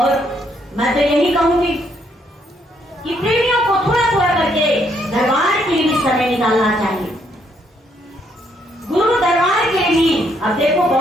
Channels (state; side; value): normal; both; correlation 0.72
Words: मैं तो यही कहूंगी कि प्रेमियों को थोड़ा थोड़ा करके दरबार के लिए समय निकालना चाहिए, गुरु दरबार के लिए। अब देखो